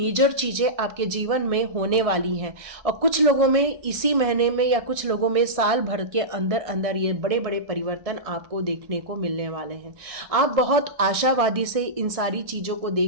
चीज़ें आपके जीवन में होने वाली हैं। और कुछ लोगों में इसी महीने में, या कुछ लोगों में साल भर के अंदर अंदर ये बड़े बड़े परिवर्तन आपको देखने को मिलने वाले हैं। आप बहुत आशावादी से इन सारी चीज़ों को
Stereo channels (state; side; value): late; left; 1.6 ms